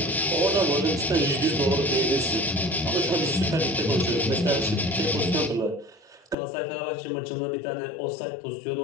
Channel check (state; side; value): drops out; right; at 6.4 s